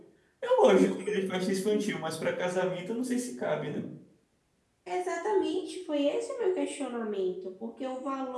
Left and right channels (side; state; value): both; identical; correlation 1.00